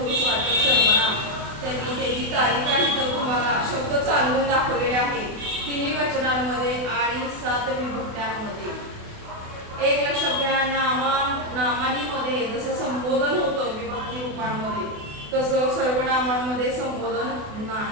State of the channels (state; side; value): late; left; 28 ms